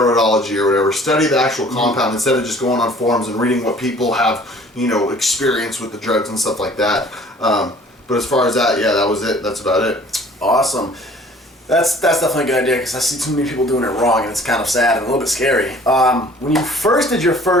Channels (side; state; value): both; normal; correlation 0.52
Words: or whatever. Study the actual compound instead of just going on forums and reading what people have, experience with the drugs and stuff like that. But as far as that, yeah, that was it. That's about it. Awesome. That's definitely a good idea because I see too many people doing it wrong and it's kind of sad and a little bit scary. When you first did your